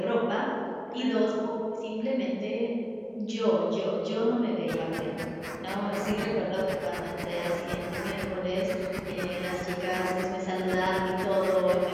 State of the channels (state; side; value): identical; both; correlation 1.00